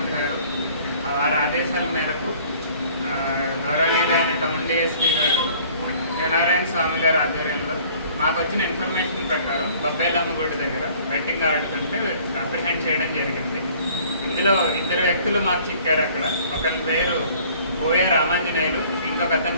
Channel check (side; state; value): both; inverted; correlation -0.53